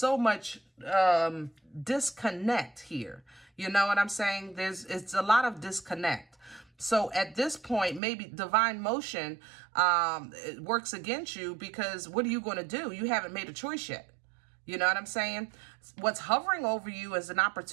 much disconnect here. You know what I'm saying? It's a lot of disconnect. So at this point, maybe divine motion it works against you, because what are you going to do? You haven't made a choice yet. You know what I'm saying? What's hovering over you is an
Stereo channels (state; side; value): drops out; left; at 8.0 s